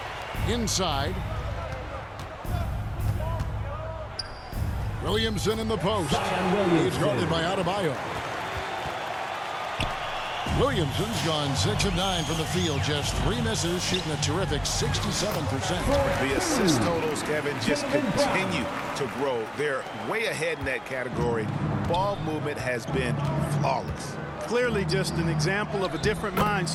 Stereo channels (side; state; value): both; identical; correlation 1.00